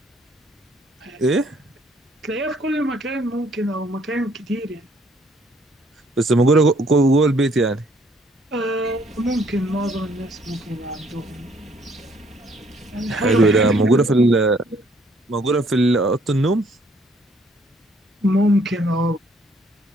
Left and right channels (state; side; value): normal; both; correlation 0.64